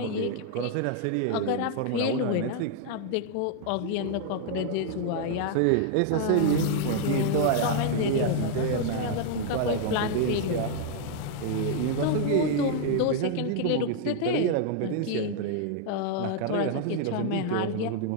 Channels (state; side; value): different; both; correlation 0.00